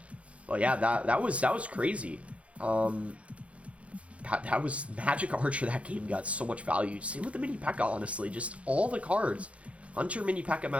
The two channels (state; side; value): late; left; 0.063 ms